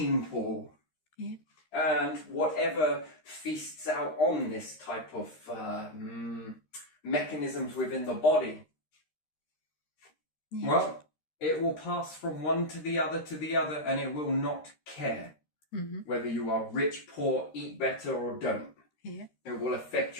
pool. Yeah. And whatever feasts out on this type of mechanisms within the body, well, it will pass from one to the other, and it will not care whether you are rich, poor, eat better or don't. Yeah. It will affect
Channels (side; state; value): right; late; 13 ms